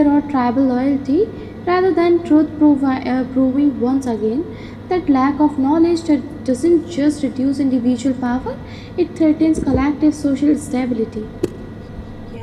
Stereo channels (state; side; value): identical; both; correlation 1.00